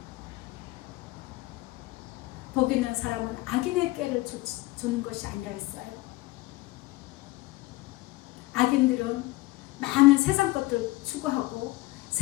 복 있는 사람은 악인의 꾀를 주는 것이 아니라 했어요. 악인들은 많은 세상 것들 추구하고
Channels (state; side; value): quieter; right; 20.3 dB